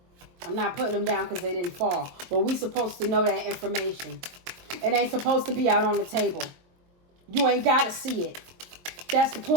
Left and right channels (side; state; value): left; late; 22 ms